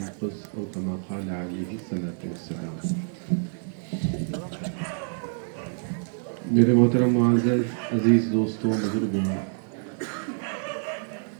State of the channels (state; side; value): silent; left; 60 dB below the other